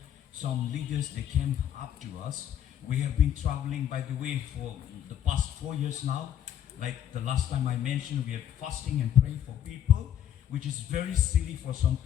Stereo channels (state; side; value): quieter; right; 10.2 dB